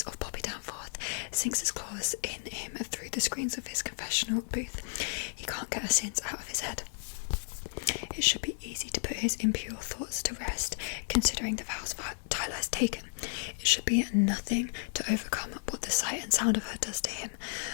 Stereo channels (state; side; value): silent; right; digital silence